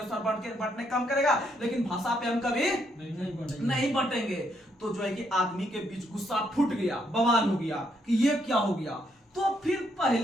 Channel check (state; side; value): normal; both; correlation 0.74